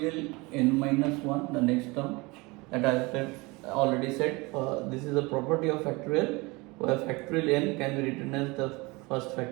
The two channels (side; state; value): left; quieter; 24.9 dB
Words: n minus 1, the next term, that I have already said. This is a property of factorial, where factorial n can be written as the first